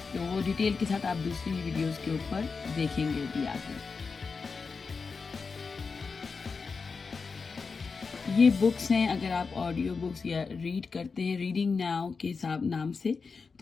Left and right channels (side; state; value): right; quieter; 4.8 dB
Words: तो वो डिटेल के साथ आप दूसरी वीडियोस के ऊपर देखेंगे भी आगे। ये बुक्स हैं, अगर आप ऑडियो बुक्स या रीड करते हैं रीडिंग नाउ के नाम से,